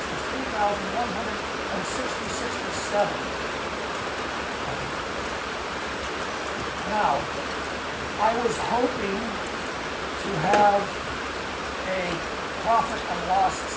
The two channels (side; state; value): both; identical; correlation 1.00